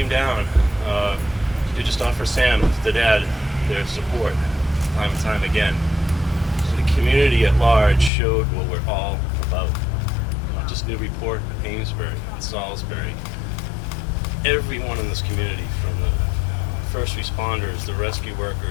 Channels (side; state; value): right; drops out; at 8.1 s